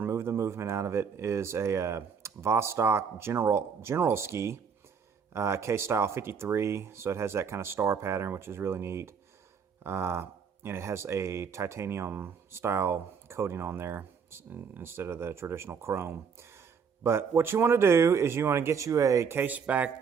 the movement out of it, is a Vostok General Ski case style 53. So it has that kind of star pattern, which is really neat. And it has a titanium style coating on there instead of the traditional chrome. But what you want to do is you want to get you a case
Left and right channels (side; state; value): left; quieter; 6.4 dB